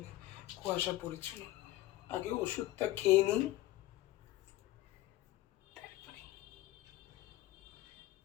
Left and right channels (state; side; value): quieter; right; 16.4 dB